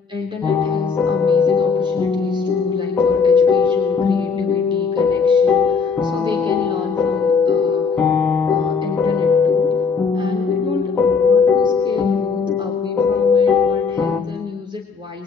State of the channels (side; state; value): right; quieter; 5.3 dB